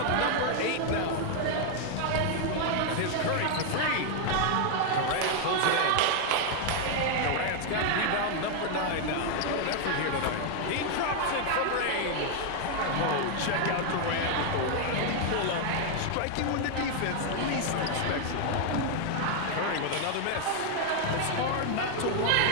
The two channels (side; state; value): both; different; correlation 0.00